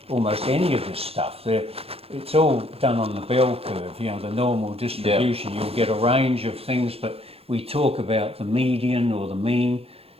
almost any of this stuff. It's all done on the bell curve, you know, the normal distribution. You'll get a range of things, but we talk about the median or the mean.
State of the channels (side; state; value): left; late; 0.28 ms